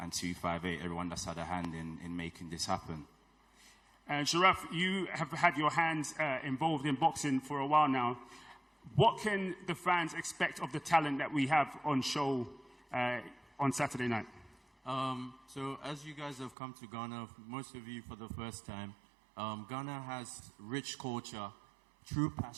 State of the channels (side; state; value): left; drops out; at 16.6 s